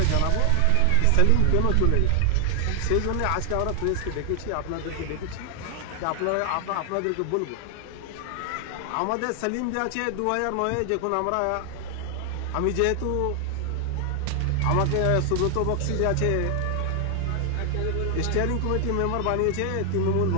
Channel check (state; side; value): different; both; correlation 0.00